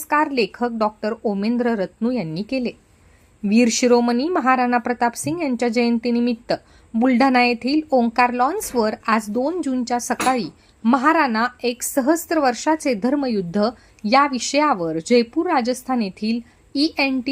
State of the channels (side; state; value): both; identical; correlation 1.00